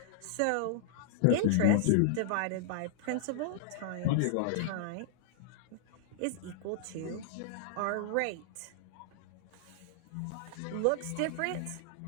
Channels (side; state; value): both; different; correlation -0.01